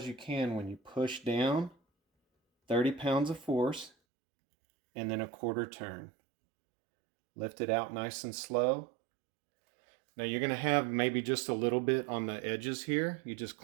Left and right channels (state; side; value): drops out; left; at 3.9 s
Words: you can when you push down 30 pounds of force and then a quarter turn. Lift it out nice and slow. Now you're going to have maybe just a little bit on the edges here. You just